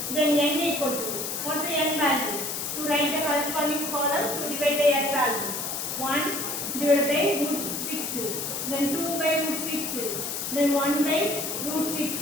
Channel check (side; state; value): left; noise; hiss, 3 dB below the sound